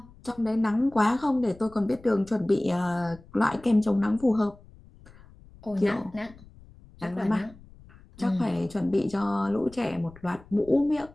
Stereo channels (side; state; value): left; noise; rumble, 23 dB below the sound